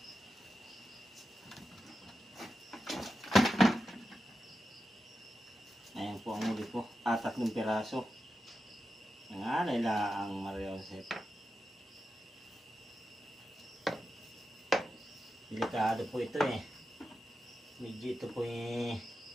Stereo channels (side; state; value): both; normal; correlation 0.90